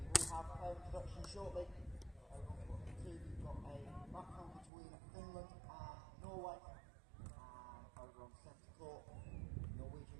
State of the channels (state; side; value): drops out; left; at 4.7 s